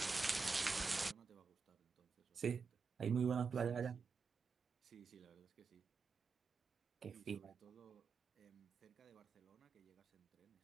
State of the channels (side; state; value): left; quieter; 4.8 dB